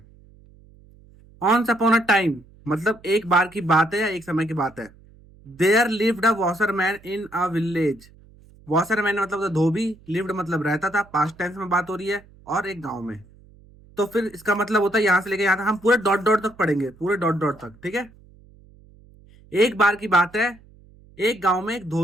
ऑन्स अपॉन अ टाइम मतलब एक बार की बात है या एक समय की बात है। There lived a washerman in a village. Washerman मतलब धोबी, लिव्ड मतलब रहता था, पास्ट टेंस में बात हो रही है, और एक गांव में। तो फिर इसका मतलब होता है यहां से लेके यहां तक हम पूरे डॉट डॉट तक पढ़ेंगे, पूरे डॉट डॉट तक। ठीक है, एक बार की बात है, एक गांव में एक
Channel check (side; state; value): right; noise; hum, 26 dB below the sound